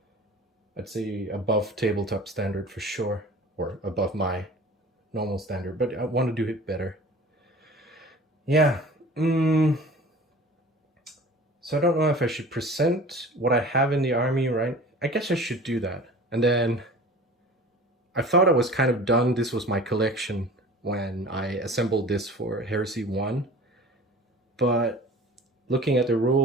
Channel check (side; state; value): both; normal; correlation 0.42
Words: I'd say above tabletop standard for sure, or above my normal standard, but I want to do it better. Yeah. So I don't know if I should present what I have in the army, right? I guess I should do that. And then I thought I was kind of done. This was my collection when I assembled this for Heresy 1. But looking at the